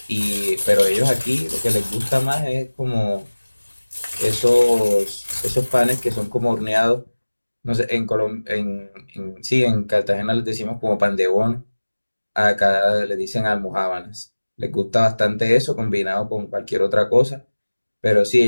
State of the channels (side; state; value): both; inverted; correlation -1.00